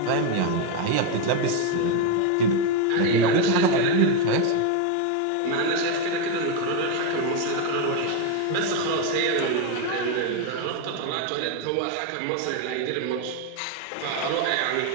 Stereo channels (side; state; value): both; different; correlation 0.02